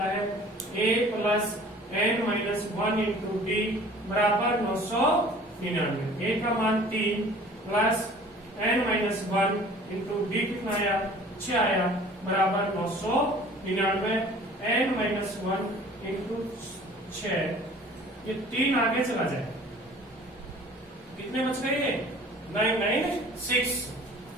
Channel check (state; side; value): normal; both; correlation 0.48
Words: है, a plus n-1 into D बराबर 999। a का मान 3 प्लस n-1 इंटू डी कितना आया, 6 आया, बराबर 999। n-1 इंटू 6, ये 3 आगे चला जाए, कितने बच गए, 996।